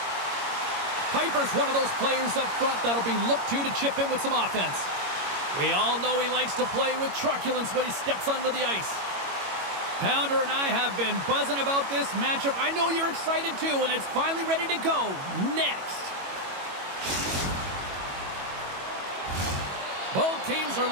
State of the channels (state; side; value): late; left; 22 ms